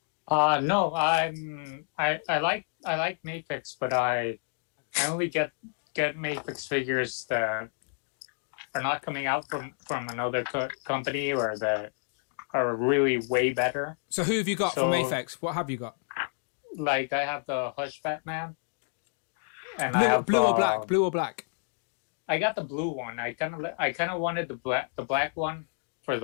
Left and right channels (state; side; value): silent; right; digital silence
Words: No, I like Mafex, but I only get Mafex figures that are not coming out from another company or that are really way better. So who have you got from Mafex? What have you got? Like, I have the Hush Batman. And blue or black? Blue or black? I got the blue one. I kind of wanted the black one for